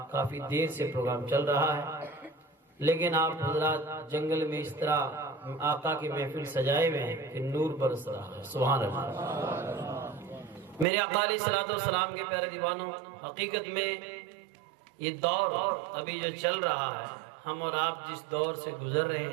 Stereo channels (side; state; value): left; drops out; at 10.9 s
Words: کافی دیر سے پروگرام چل رہا ہے، لیکن آپ حضرات جنگل میں اس طرح آقا کی محفل سجائے ہوئے ہیں کہ نور برس رہا ہے۔ سبحان اللہ۔ میرے آقا علیہ الصلوۃ والسلام کے پیارے دیوانوں، حقیقت میں یہ دور ابھی جو چل رہا ہے، ہم اور آپ جس دور سے گزر رہے